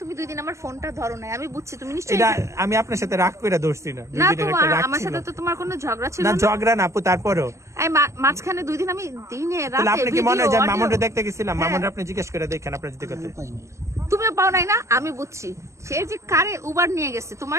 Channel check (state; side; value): late; left; 0.14 ms